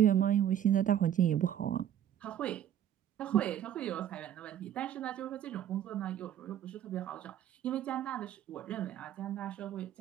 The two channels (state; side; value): quieter; left; 10.6 dB